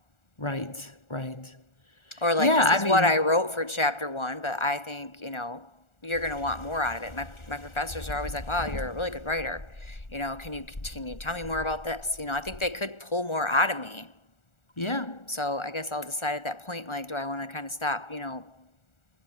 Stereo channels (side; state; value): right; late; 1.4 ms